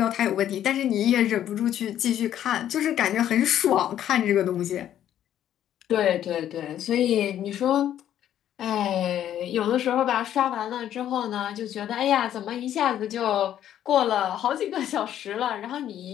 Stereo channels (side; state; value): right; quieter; 11.0 dB